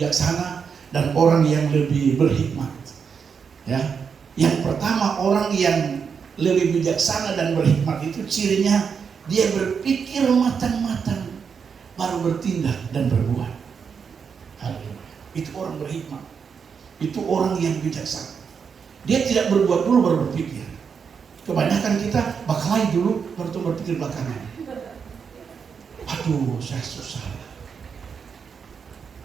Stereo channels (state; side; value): quieter; left; 6.3 dB